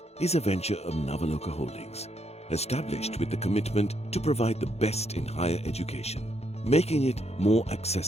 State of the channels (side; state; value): right; late; 0.31 ms